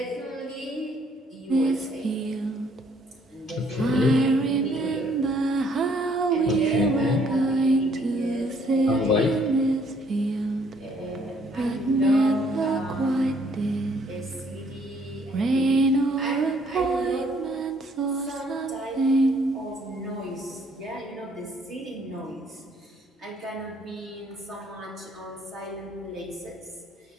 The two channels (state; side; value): normal; both; correlation 0.64